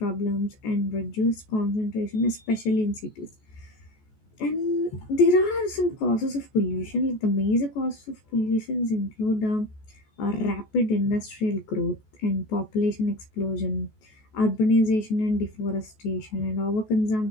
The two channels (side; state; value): right; late; 14 ms